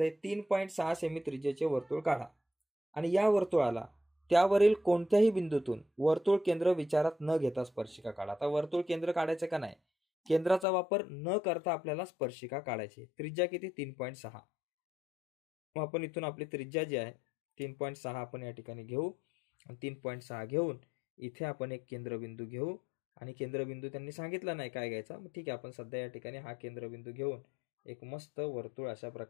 3.6 सेमी त्रिज्येचे वर्तुळ काढा आणि या वर्तुळाला त्यावरील कोणत्याही बिंदूतून वर्तुळ केंद्र विचारात न घेता स्पर्शिका काढा. आता वर्तुळ केंद्र काढायचं का नाही, केंद्राचा वापर न करता आपल्याला स्पर्शिका काढायची. त्रिज्या किती, 3.6. मग आपण इथून आपली त्रिज्या जी आहे 3.6 आपण या ठिकाणी घेऊ. 3.6 घेऊन इथे आपण एक केंद्रबिंदू घेऊ आणि केंद्रबिंदू त्यांनी सांगितला नाही काय घ्यायचा, मग ठीक आहे आपण सध्या या ठिकाणी हा केंद्रबिंदू घेऊन एक मस्त वर्तुळ अशा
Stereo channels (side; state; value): right; drops out; at 10.7 s